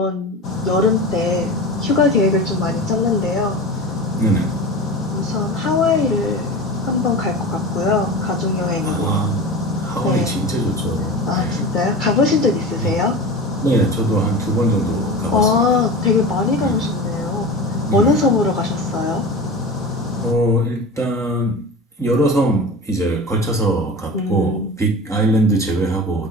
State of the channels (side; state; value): both; normal; correlation 0.31